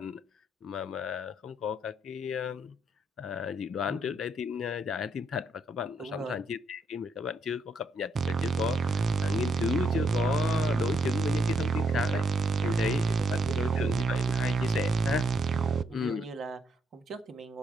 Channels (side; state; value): both; normal; correlation 0.75